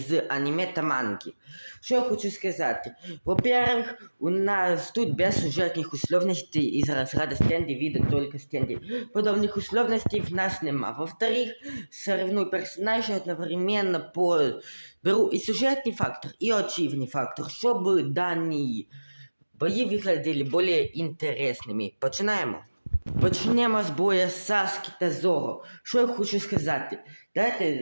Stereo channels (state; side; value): inverted; both; correlation -1.00